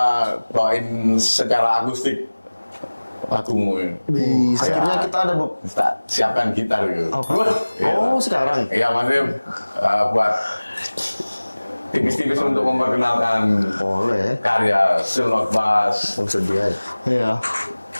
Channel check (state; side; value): inverted; both; correlation -1.00